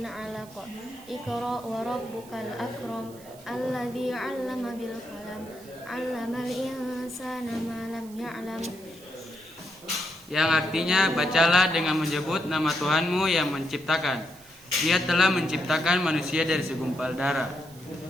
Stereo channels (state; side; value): noise; right; hiss, 22 dB below the sound